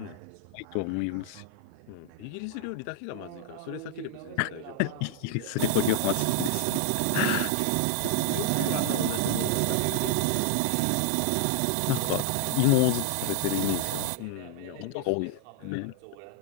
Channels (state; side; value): different; both; correlation 0.00